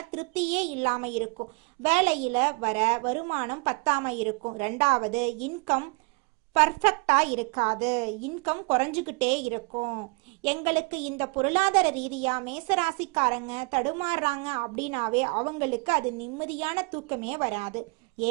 திருப்தியே இல்லாம இருக்கும், வேலையில வர வருமானம் பத்தாம இருக்கும், ரெண்டாவது இன்கம் பர்ஃபெக்டா இருக்காது, இன்கம் குறைஞ்சுக்கிட்டே இருக்கும். எங்களுக்கு இந்த பொருளாதார ரீதியா மேசராசிக்காரங்க தடுமாறுறாங்க அப்படின்னாவே அவங்களுக்கு அது நிம்மதியான தூக்கமே வராது.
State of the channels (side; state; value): left; quieter; 30.6 dB